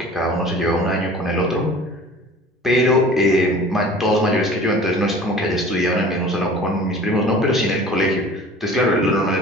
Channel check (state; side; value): normal; both; correlation 0.44